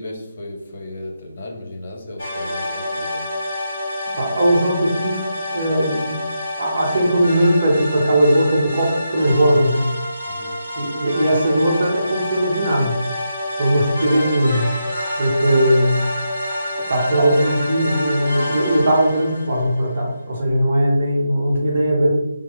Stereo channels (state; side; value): inverted; both; correlation -0.84